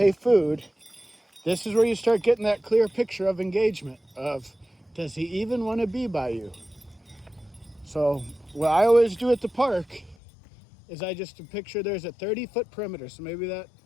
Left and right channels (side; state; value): right; drops out; at 10.2 s